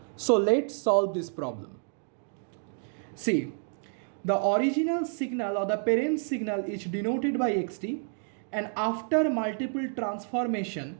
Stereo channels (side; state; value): left; silent; 58 dB below the other